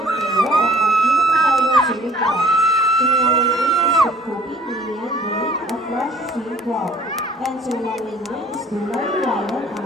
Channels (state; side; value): normal; both; correlation 0.53